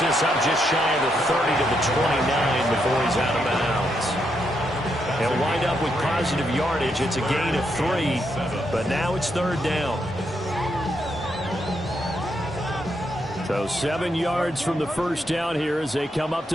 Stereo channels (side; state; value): both; normal; correlation 0.79